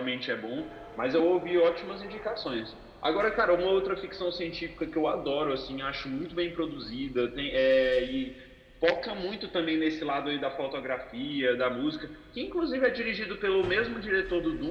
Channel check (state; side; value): identical; both; correlation 1.00